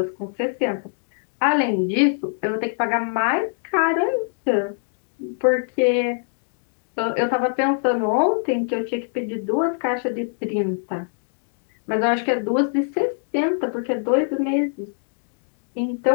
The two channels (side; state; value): right; silent; digital silence